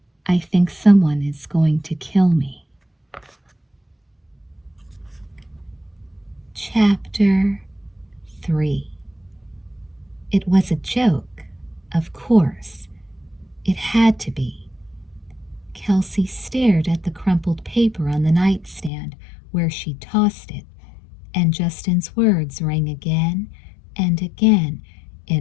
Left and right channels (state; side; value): drops out; right; at 18.9 s